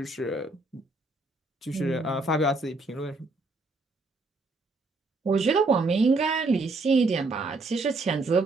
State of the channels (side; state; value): left; quieter; 3.3 dB